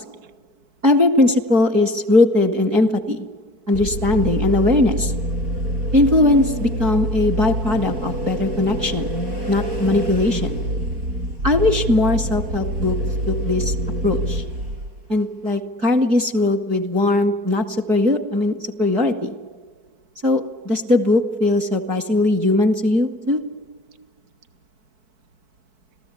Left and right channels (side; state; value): left; late; 4.6 ms